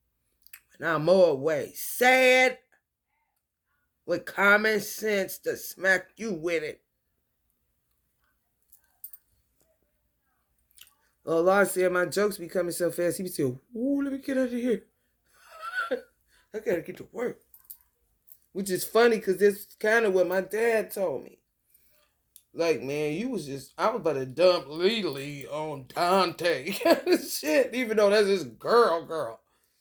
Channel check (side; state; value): both; identical; correlation 1.00